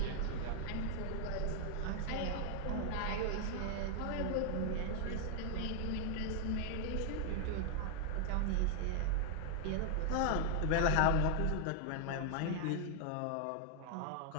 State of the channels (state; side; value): different; both; correlation 0.00